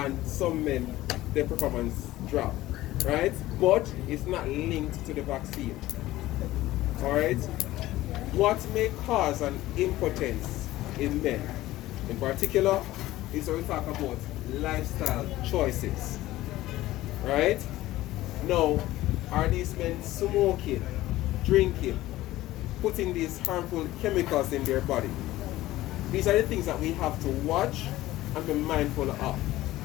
some men, their performance dropped, right? But it's not linked to the vaccine. Alright? What may cause an impotence in men, in particular, is when we talk about lifestyle choices. Right? Now, are these men smoking, drinking, putting these harmful chemicals in their body? These are the things that we have to watch and be mindful of,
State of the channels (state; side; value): quieter; right; 16.3 dB